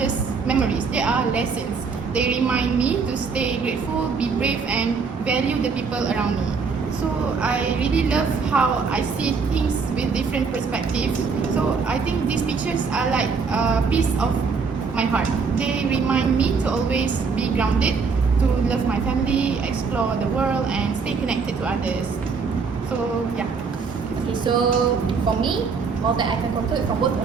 memories, they are lessons. They remind me to stay grateful, be brave and value the people around me. So I really love how I see things with different perspectives. So I think these pictures are like a piece of my heart. They remind me to always be grounded, to love my family, explore the world and stay connected to others. So yeah. Okay, so for me, all that I can conclude from both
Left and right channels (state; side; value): quieter; left; 5.1 dB